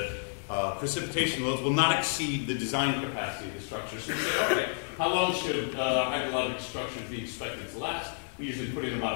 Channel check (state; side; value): silent; right; digital silence